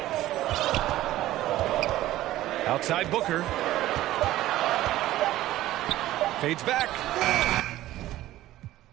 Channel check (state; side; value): quieter; left; 15.0 dB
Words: Outside Booker. Fades back.